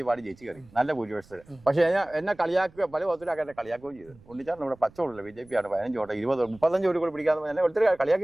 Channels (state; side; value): noise; right; rumble, 26 dB below the sound